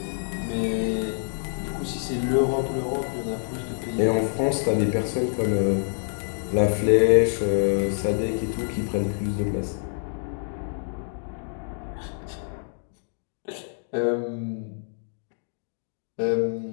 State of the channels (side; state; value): right; silent; digital silence